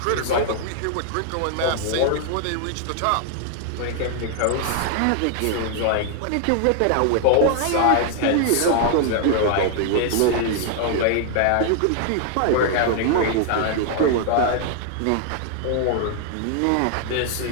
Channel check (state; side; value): different; both; correlation 0.00